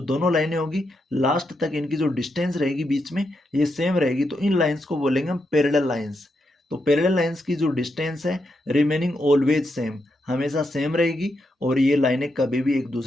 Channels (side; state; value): both; normal; correlation 0.83